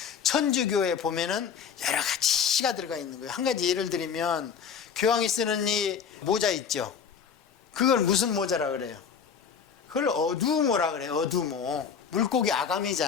천주교에 보면은 여러 가지가 들어가 있는 거예요. 한 가지 예를 들면 교황이 쓰는 이 모자 있죠. 그걸 무슨 모자라 그래요? 그걸 어두모라 그래요. 어두모. 물고기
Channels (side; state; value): right; quieter; 6.9 dB